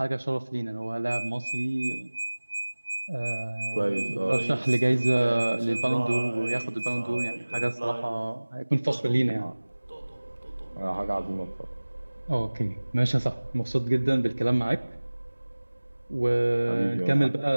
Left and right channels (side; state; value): both; inverted; correlation -1.00